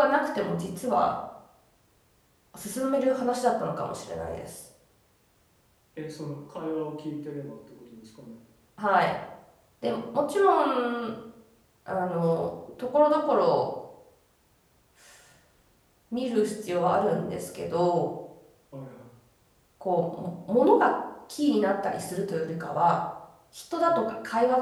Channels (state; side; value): identical; both; correlation 1.00